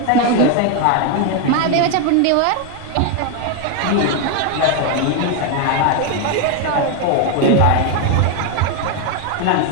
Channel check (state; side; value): different; both; correlation 0.01